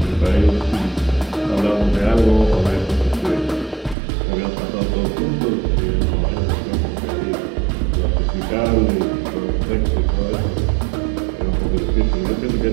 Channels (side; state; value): left; drops out; at 4.0 s